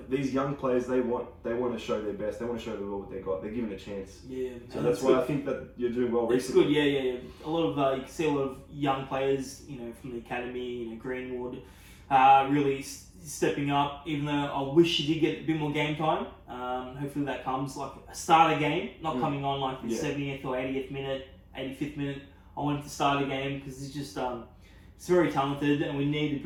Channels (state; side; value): identical; both; correlation 1.00